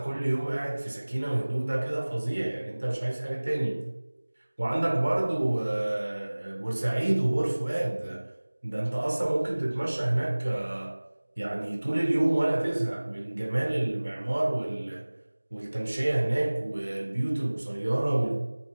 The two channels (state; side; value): inverted; both; correlation -1.00